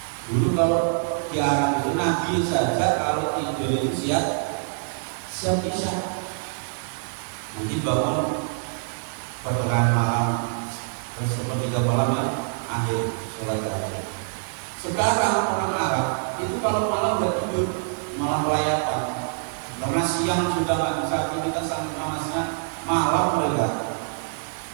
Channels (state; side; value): silent; left; 61 dB below the other